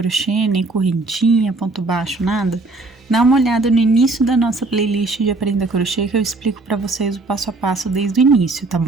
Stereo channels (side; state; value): left; quieter; 3.3 dB